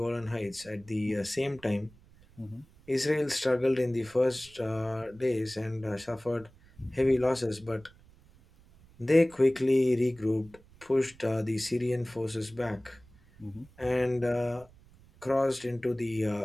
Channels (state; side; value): noise; right; rumble, 26 dB below the sound